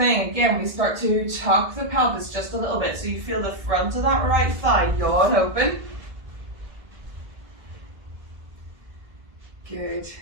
again, we start to tuck the pelvis just a little bit, so you feel the front of that right thigh yawn open. Good.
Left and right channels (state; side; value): late; left; 1.7 ms